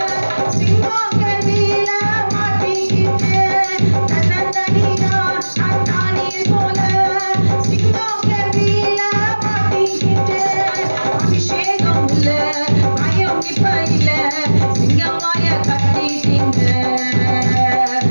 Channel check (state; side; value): inverted; both; correlation -1.00